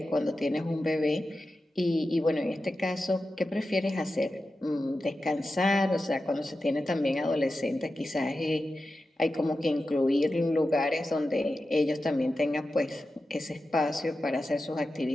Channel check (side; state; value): both; normal; correlation 0.92